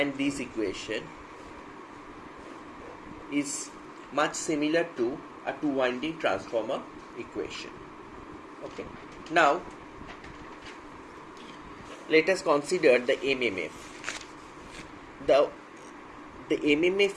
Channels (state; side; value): identical; both; correlation 1.00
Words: this equation is much similar to a two-winding transformer equation. Okay. Now let us consider the MMF. The